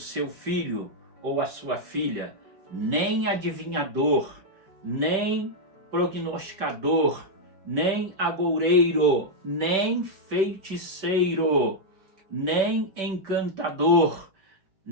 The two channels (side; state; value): left; late; 5.2 ms